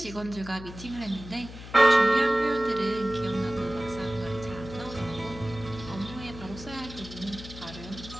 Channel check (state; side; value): noise; left; hum, 13 dB below the sound